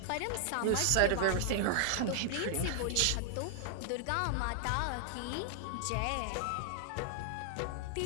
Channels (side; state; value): both; different; correlation -0.01